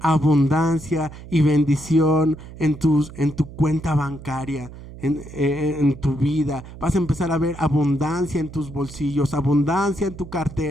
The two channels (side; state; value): right; noise; hum, 15 dB below the sound